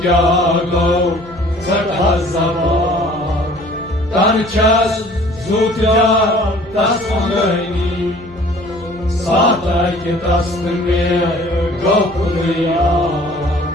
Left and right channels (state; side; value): noise; left; hum, 22 dB below the sound